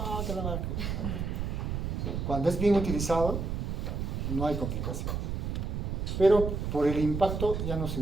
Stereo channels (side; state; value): right; noise; rumble, 2 dB below the sound